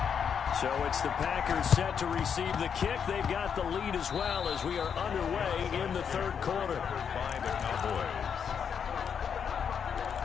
So it's the Packers set to receive the kick. They've got the lead as well as we are underway in the 3rd quarter. By the Cowboys.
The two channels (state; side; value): quieter; right; 7.3 dB